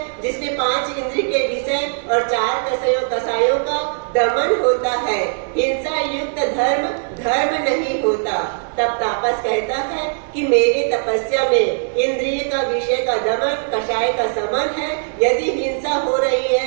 जिसमें 5 इंद्रिय के विषय और 4 कसायों का दमन होता है। हिंसा युक्त धर्म धर्म नहीं होता। तब तापस कहता है कि मेरे तपस्या में इंद्रिय का विषय का दमन, कषाय का समन है। यदि हिंसा हो रही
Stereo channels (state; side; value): silent; left; digital silence